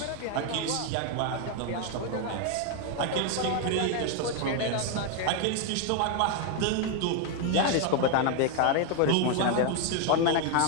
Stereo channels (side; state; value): both; different; correlation 0.01